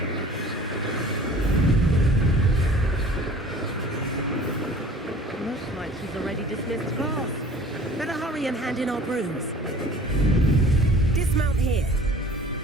Looks like she's already dismissed class. Better hurry and hand in our brooms. Dismount here.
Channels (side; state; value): both; normal; correlation 0.48